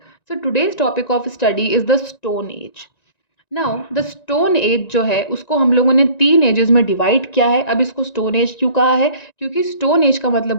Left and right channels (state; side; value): late; right; 1.9 ms